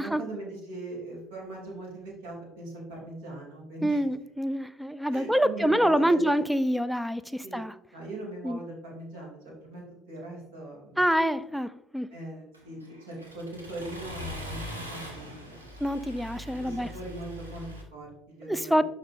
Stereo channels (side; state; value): both; normal; correlation 0.90